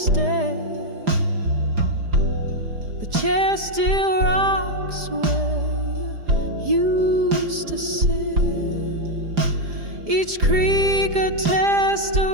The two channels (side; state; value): left; late; 4.9 ms